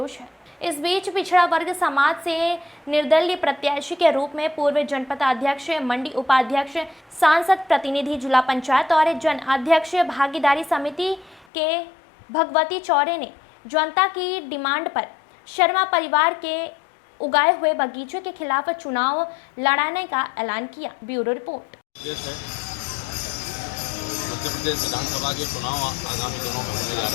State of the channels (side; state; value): right; drops out; at 11.5 s